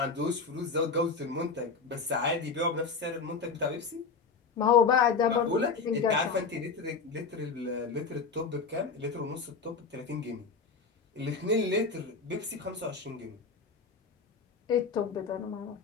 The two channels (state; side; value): quieter; right; 4.8 dB